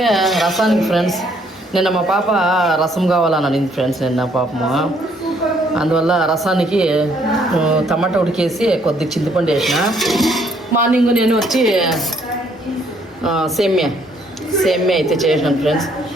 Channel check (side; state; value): both; normal; correlation 0.67